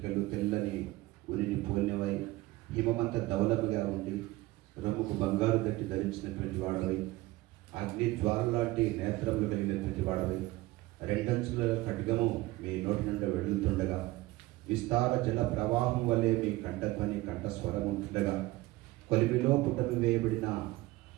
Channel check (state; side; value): quieter; left; 19.3 dB